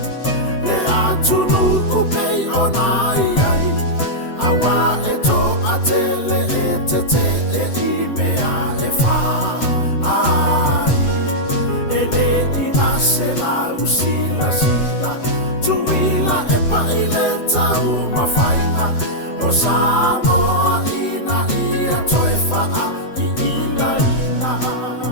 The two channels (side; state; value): right; late; 7.9 ms